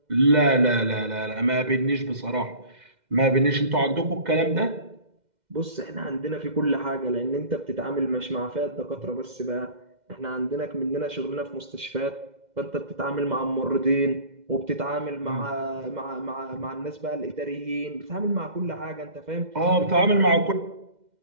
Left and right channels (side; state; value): left; late; 2.1 ms